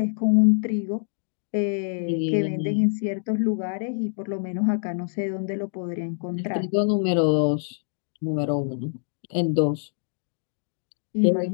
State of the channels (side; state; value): right; silent; digital silence